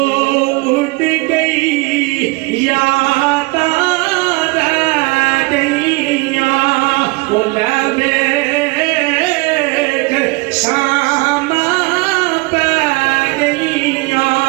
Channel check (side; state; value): left; quieter; 25.7 dB